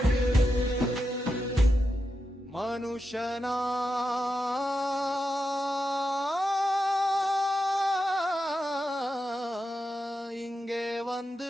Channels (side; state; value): both; normal; correlation 0.87